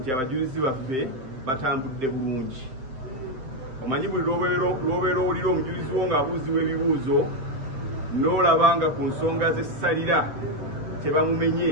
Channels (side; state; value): left; late; 7.7 ms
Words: abajulizi baffe batambudde bulungi. Omanyi buli lw'obeera owulira omujulizi wo ng'abuuzibwa ebibuuzo n'olaba nga ku nsonga z'essalira tebamumenye,